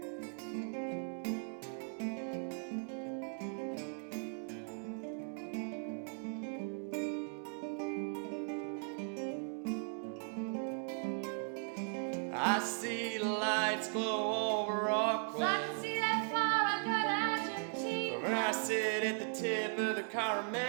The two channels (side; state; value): left; silent; 52 dB below the other